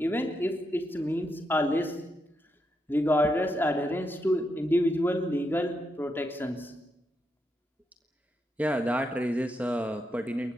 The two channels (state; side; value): normal; both; correlation 0.82